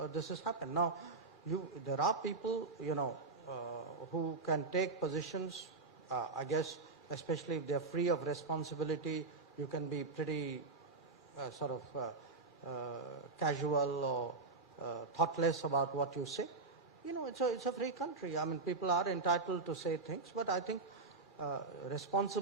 this has happened. Now, there are people who can take positions. I guess, especially if they're free of responsibility, you can be pretty casual or thoughtless about what you say. It's a free country. I mean, people are entitled to say things, but I think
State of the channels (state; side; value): quieter; left; 3.8 dB